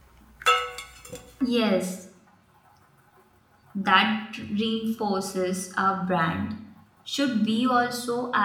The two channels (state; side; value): identical; both; correlation 1.00